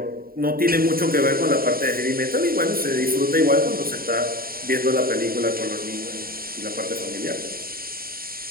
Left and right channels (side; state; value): left; late; 0.43 ms